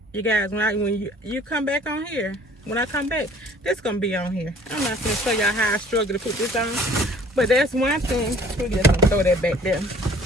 You guys, when you come back on here, when I come back, this gonna be on here. I'm not gonna show y'all how I struggle to put this on, but that's one thing. We're just gonna throw that back there.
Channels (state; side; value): normal; both; correlation 0.54